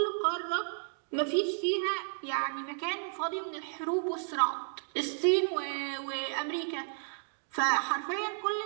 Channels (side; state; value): left; silent; digital silence